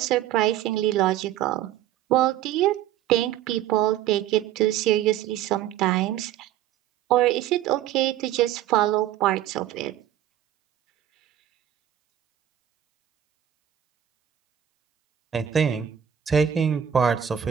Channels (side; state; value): left; quieter; 11.1 dB